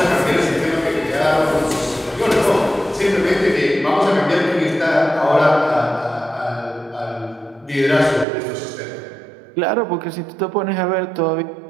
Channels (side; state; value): left; drops out; at 8.2 s